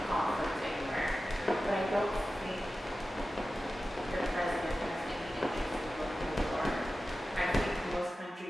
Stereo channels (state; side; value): normal; both; correlation 0.94